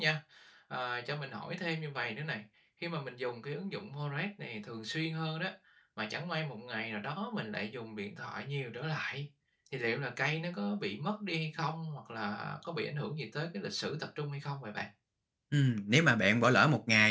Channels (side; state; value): both; identical; correlation 1.00